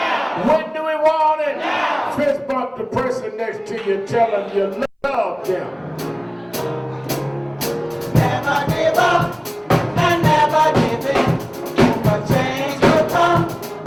When do we want it? Now. Fist bump the person next to you, tell them you love them. Never give up and never give in. But change will come.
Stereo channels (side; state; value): both; identical; correlation 1.00